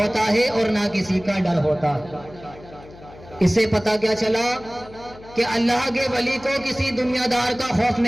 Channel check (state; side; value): noise; left; hum, 20 dB below the sound